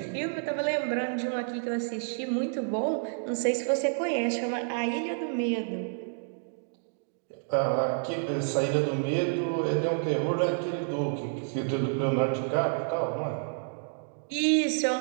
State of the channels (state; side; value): silent; left; digital silence